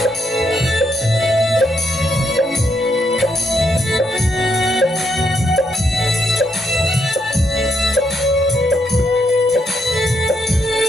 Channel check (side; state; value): both; normal; correlation 0.77